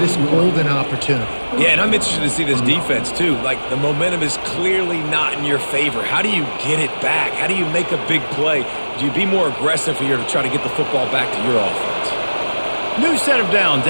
golden opportunity? Yeah, and I'm interested to see this defense, too. Like, the momentum is clearly not in your favor. How do you get it back? How do you make a big play? Do you be more aggressive here to try to get the football back to your offense? New set of downs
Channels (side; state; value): both; inverted; correlation -1.00